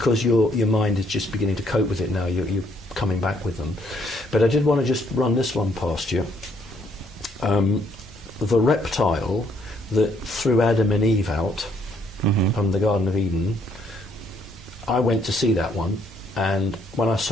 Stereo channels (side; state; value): both; normal; correlation 0.68